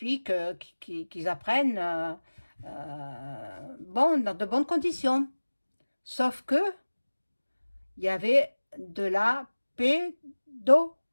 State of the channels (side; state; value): both; inverted; correlation -1.00